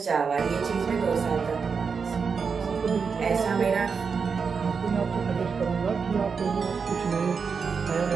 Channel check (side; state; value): left; quieter; 5.6 dB